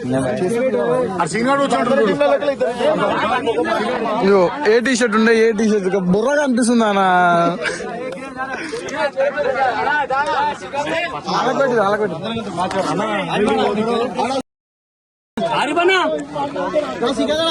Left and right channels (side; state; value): both; identical; correlation 1.00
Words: ఏ టీ షర్ట్ ఉండే? ఏ టీ షర్ట్ బుర్రగా అనిపిస్తుంది అన్న.